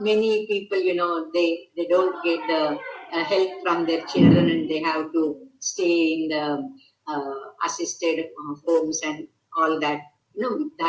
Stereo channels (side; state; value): both; identical; correlation 1.00